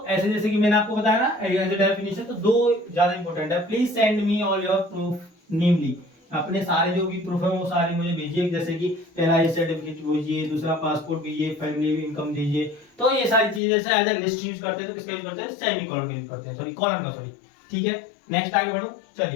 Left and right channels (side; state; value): right; drops out; at 13.6 s